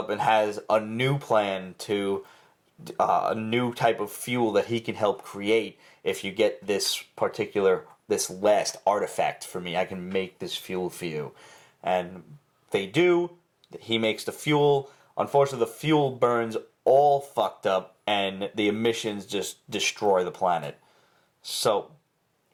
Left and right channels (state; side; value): identical; both; correlation 1.00